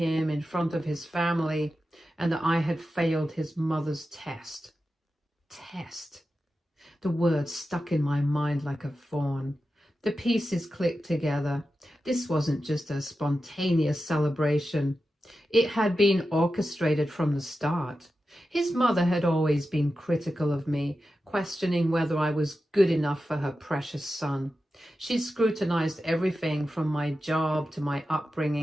in front of his family and that I had failed his mother's test. Test. The words stuck in my mind like a thorn. The pieces clicked together. This wasn't just a spontaneous celebration. It had been orchestrated from the start. His mother had always been critical of me, questioning whether I was good enough for her precious son. She scrutinized everything from my job to my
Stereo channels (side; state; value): both; normal; correlation 0.92